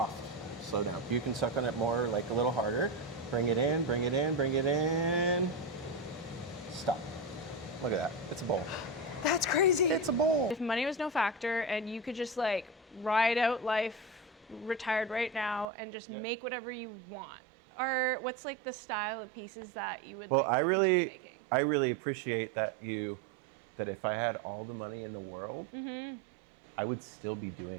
Slow down. You can suck on it more, like a little harder. Bring it in, bring it in, bring it in. Stop. Look at that. It's a bowl. That's crazy. It's a bowl. If money was no factor and you could just like ride out life, retired right now, and just make whatever you want, or what's like the style of pieces that you would Well, like I to really, keep making? I really appreciate that that if I had all the money in the world, I would still be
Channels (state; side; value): drops out; left; at 15.7 s